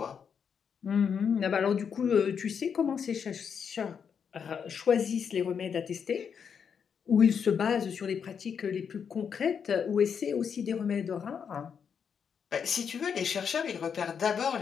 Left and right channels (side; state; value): right; quieter; 7.0 dB